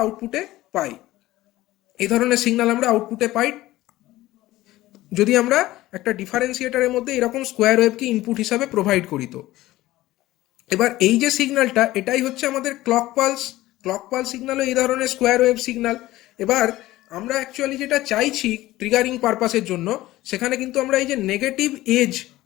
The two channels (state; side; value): quieter; right; 16.7 dB